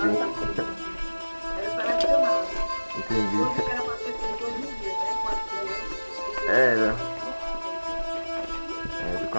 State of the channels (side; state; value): both; inverted; correlation -1.00